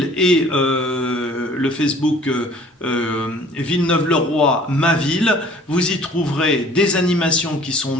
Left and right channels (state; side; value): normal; both; correlation 0.52